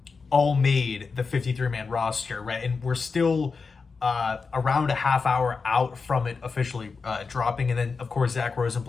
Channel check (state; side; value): quieter; right; 4.8 dB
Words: all made the 53-man roster, right? And we're still around a half hour out from it officially dropping. And then, of course, Zach